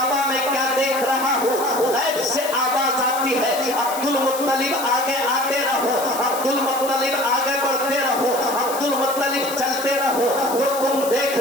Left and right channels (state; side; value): noise; left; hiss, 10 dB below the sound